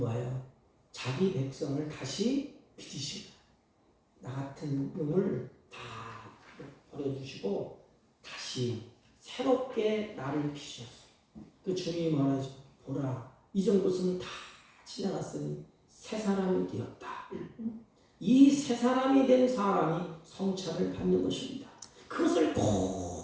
자기 백성을 다시 빚으십니다. 나 같은 놈을 다 버려주시고 다시 새롭게 나를 빚으셨어요. 그 주님이 말하죠. 보라, 이전 것은 다 지나갔으니 새 사람이 되었다. 이 새 사람이 된 사람이 성찬을 받는 것입니다. 그것을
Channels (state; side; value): identical; both; correlation 1.00